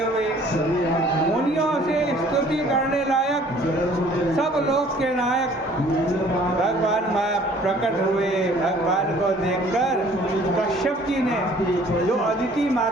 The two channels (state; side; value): normal; both; correlation 0.55